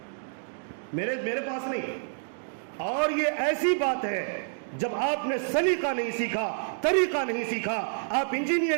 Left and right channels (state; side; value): silent; left; digital silence